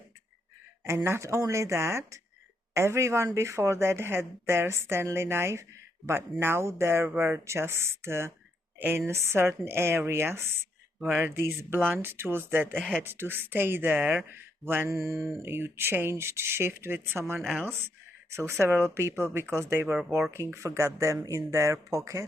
And not only that, everyone before that had their Stanley knife, but now there were just in certain areas where these blunt tools that had to stay there when you changed shift with someone else. So several people, because they were working, forgot them in their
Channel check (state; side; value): normal; both; correlation 0.77